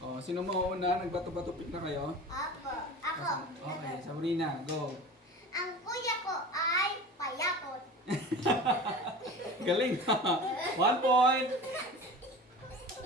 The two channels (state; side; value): normal; both; correlation 0.35